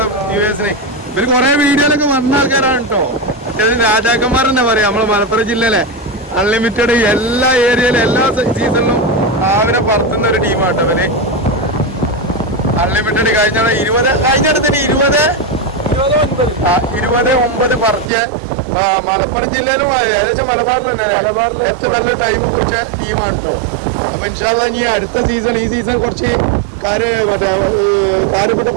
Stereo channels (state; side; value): drops out; left; at 18.1 s